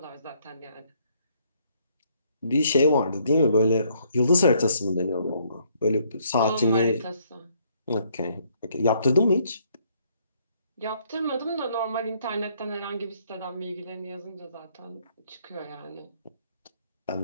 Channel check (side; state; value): both; inverted; correlation -0.68